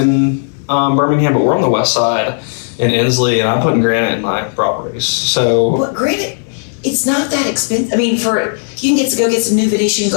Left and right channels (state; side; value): silent; right; digital silence